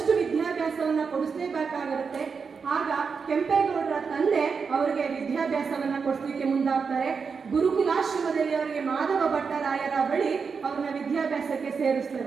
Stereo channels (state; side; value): quieter; left; 5.6 dB